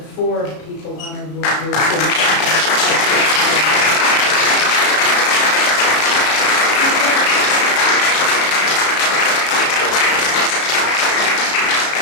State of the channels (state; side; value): late; right; 33 ms